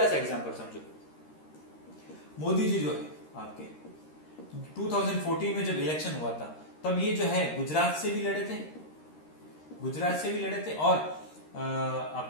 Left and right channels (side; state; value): right; late; 13 ms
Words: सा एग्जांपल समझो, मोदी जी जो है आपके 2014 में जब इलेक्शन हुआ था तब ये जो है गुजरात से भी लड़े थे, गुजरात से भी लड़े थे, और